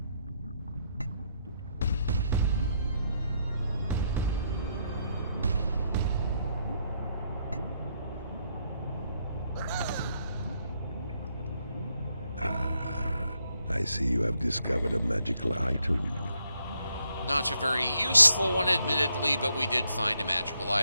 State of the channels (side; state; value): both; inverted; correlation -0.76